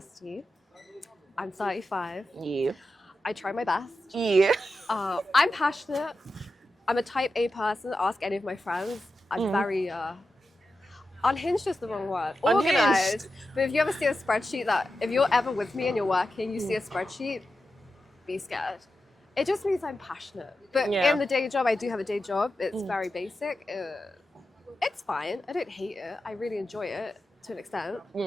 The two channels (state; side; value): normal; both; correlation 0.91